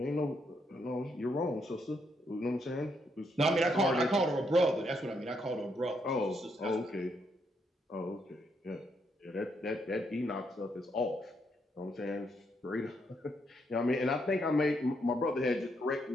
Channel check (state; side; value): normal; both; correlation 0.76